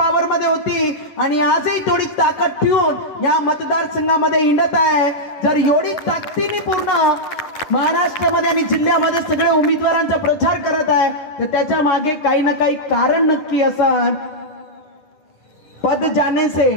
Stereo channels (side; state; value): right; late; 9.8 ms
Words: मध्ये होती आणि आजही तेवढी ताकद ठेवून या मतदारसंघामध्ये हिंडत आहे। जर एवढी ताकदीने पूर्ण महाराष्ट्रामध्ये आणि जिल्ह्यामध्ये सगळे उमेदवारांचा प्रचार करत आहे तर त्याच्या मागे काही ना काही कारण नक्की असं। पद जाने से